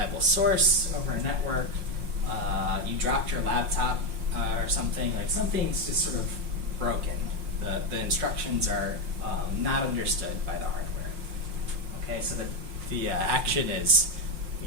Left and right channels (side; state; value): left; late; 5.6 ms